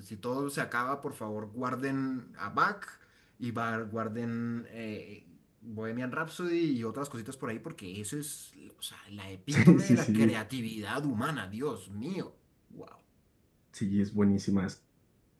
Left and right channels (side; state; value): both; identical; correlation 1.00